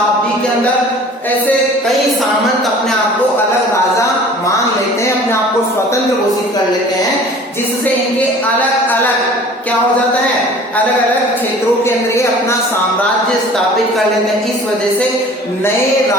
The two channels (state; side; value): normal; both; correlation 0.46